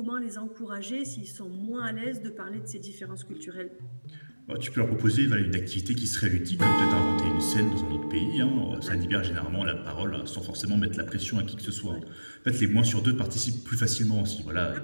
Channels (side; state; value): both; inverted; correlation -1.00